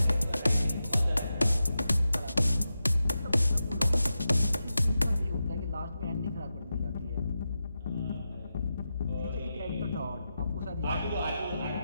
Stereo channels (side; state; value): both; inverted; correlation -0.90